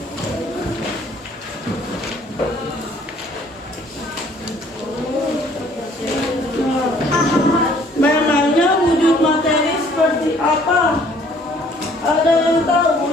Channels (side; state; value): both; normal; correlation 0.58